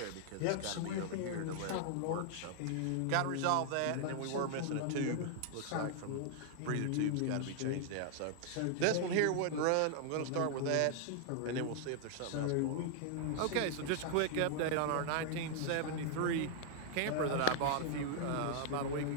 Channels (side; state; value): both; different; correlation 0.00